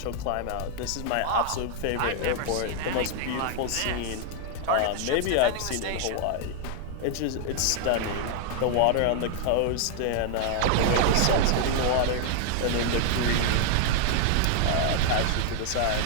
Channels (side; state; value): both; different; correlation 0.00